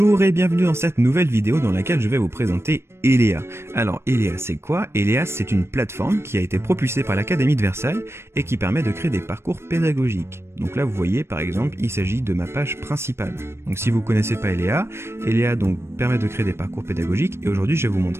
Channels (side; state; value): left; late; 0.12 ms